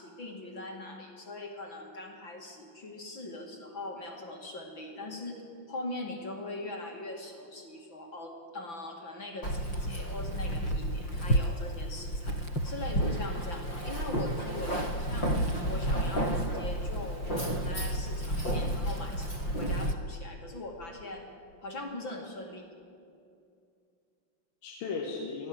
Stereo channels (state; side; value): late; right; 5.7 ms